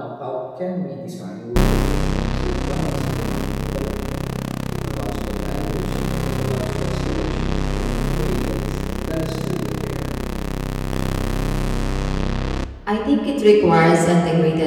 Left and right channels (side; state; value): both; identical; correlation 1.00